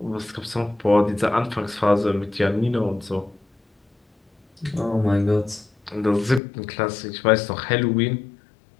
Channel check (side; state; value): right; drops out; at 6.4 s